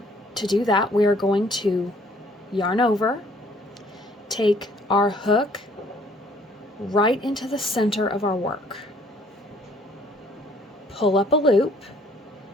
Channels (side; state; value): both; normal; correlation 0.60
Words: do that, we are going to yarn over, take our hook right into the center of our work, pull up a loop.